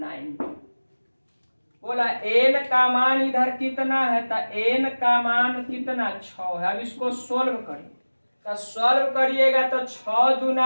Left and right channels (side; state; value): both; inverted; correlation -1.00